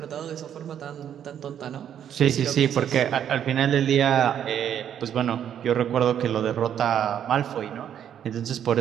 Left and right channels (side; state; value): left; quieter; 9.5 dB